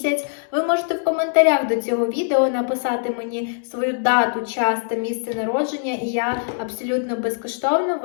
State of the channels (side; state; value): right; silent; digital silence